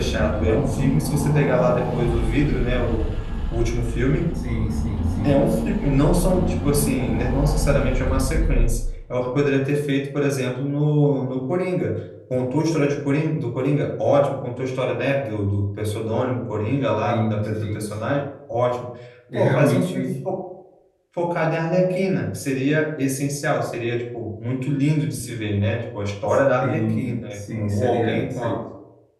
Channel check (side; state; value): both; identical; correlation 1.00